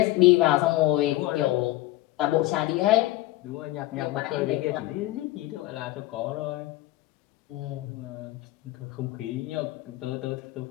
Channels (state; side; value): quieter; right; 17.0 dB